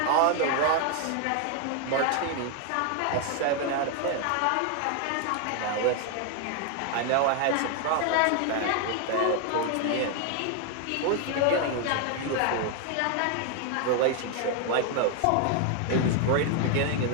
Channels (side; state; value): both; different; correlation 0.01